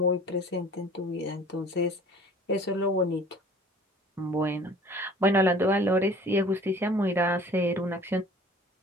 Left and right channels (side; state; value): both; normal; correlation 0.48